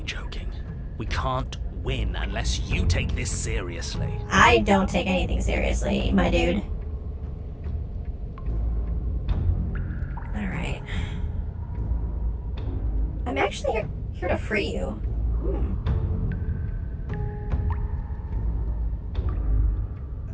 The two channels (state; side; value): identical; both; correlation 1.00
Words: joking. We can't win unless you take this seriously. I don't take anything seriously, my dude. Alright. I'm actually here to free you.